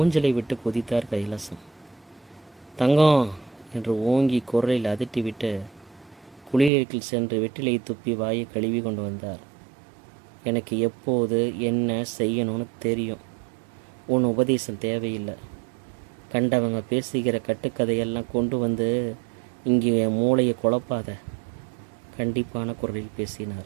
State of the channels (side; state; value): left; drops out; at 6.7 s